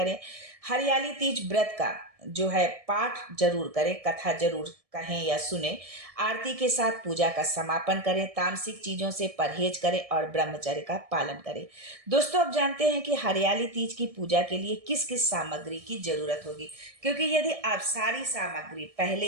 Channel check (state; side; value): late; left; 1.6 ms